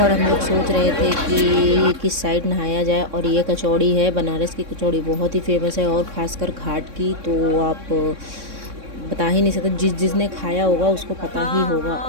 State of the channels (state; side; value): late; left; 3.6 ms